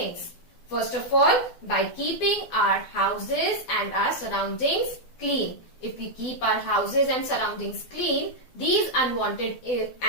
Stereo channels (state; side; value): late; right; 12 ms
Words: First of all, by keeping our houses and our surroundings clean. If we keep our houses and surroundings clean, these unwanted